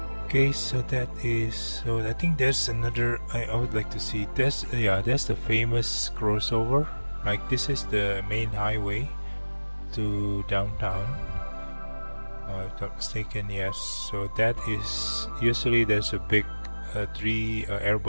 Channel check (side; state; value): both; inverted; correlation -1.00